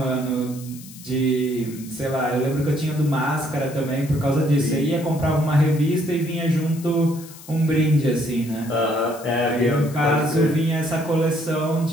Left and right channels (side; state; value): left; noise; hiss, 18 dB below the sound